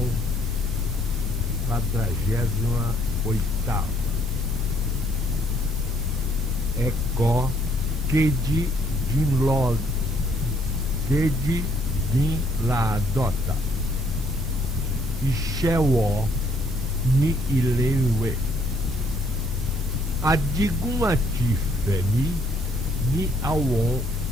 48ª. Eko keji din la dota. Ìṣẹ́wọ̀ ní ilé ìwé. Adigun àti Fẹ̀mí ní àwọn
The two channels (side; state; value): both; normal; correlation 0.66